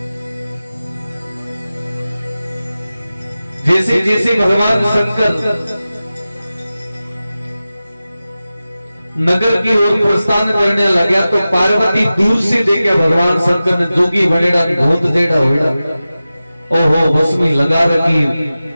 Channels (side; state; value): both; inverted; correlation -0.95